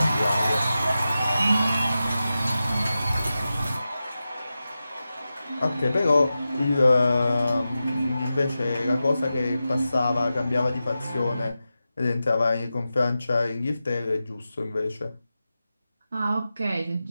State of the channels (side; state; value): both; inverted; correlation -0.92